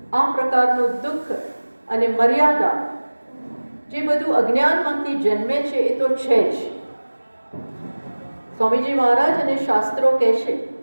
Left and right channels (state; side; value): inverted; both; correlation -1.00